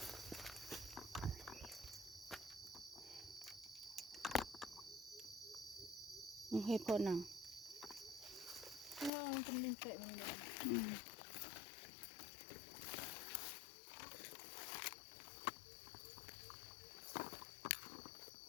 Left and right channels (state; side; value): drops out; right; at 9.1 s